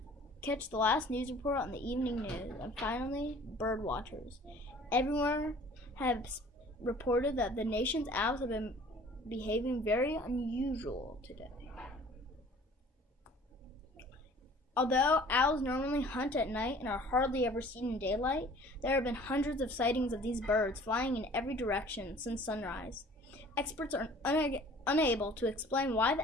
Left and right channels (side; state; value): both; normal; correlation 0.50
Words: last news report on the evening news, and finally, bird watchers. Everyone had reported that the nation's owls have been behaving very unusual today. Although owls normally hunt at night and are hardly ever seen in daylight, there have been hundreds of sightings of these birds flying in every direction since sunrise. Experts are unable to explain why